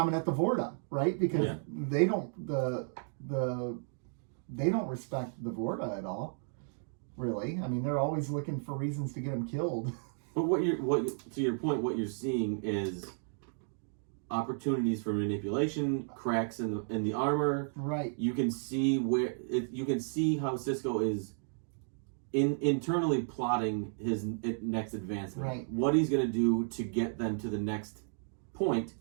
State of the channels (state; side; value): silent; left; digital silence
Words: at the Vorta, right? Because Yeah. they don't they don't respect the Vorta at all. Really, I mean, they're always looking for reasons to get them killed. But to your point, what you're seeing is opportunities for manipulation, cracks in the armor. Right. You can see you can see how Cisco is internally plotting his next advancement. Right. What he's going to do to get them to the next point